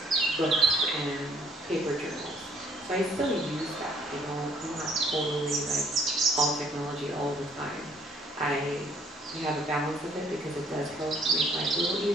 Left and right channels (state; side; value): normal; both; correlation 0.62